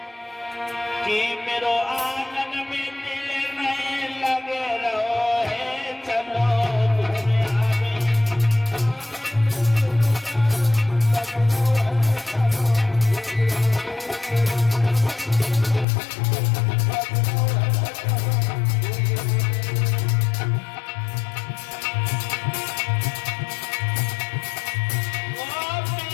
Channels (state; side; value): drops out; right; at 15.9 s